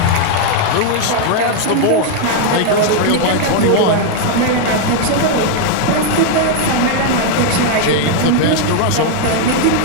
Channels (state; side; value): different; both; correlation 0.00